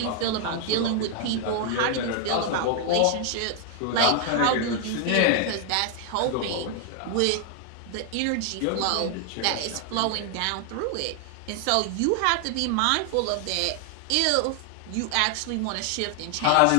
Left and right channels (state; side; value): different; both; correlation 0.00